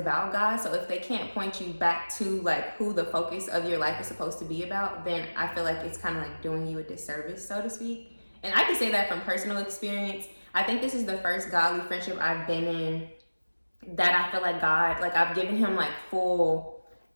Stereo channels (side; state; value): both; inverted; correlation -1.00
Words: God. So if they can't point you back to like who the focus of your life is supposed to be about, then I feel like it's kind of like doing you a disservice, so to speak. And I can say that from personal experience. I think this is the first godly friendship I've been in that I feel like God, like I've given him like full